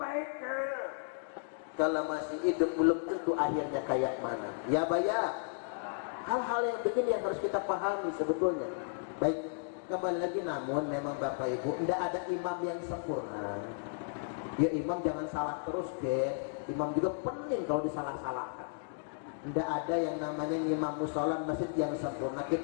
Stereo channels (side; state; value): right; silent; digital silence